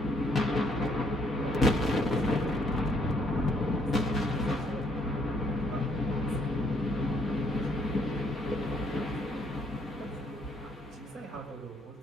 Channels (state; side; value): normal; both; correlation 0.68